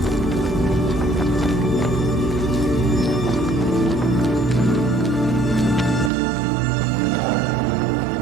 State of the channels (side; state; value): left; drops out; at 6.1 s